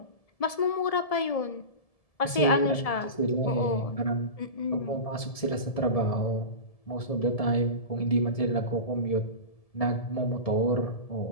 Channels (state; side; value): late; right; 1.7 ms